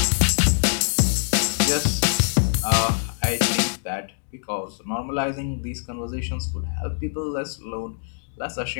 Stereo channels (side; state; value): right; silent; digital silence